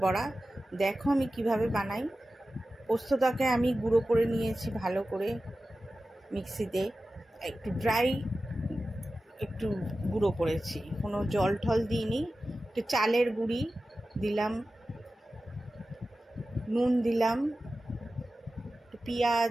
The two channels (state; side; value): normal; both; correlation 0.94